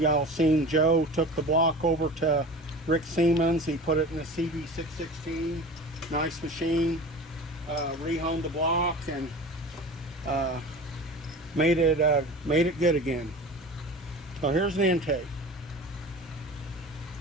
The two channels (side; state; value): both; normal; correlation 0.36